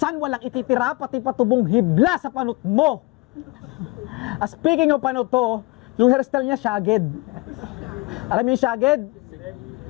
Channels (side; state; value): right; quieter; 23.6 dB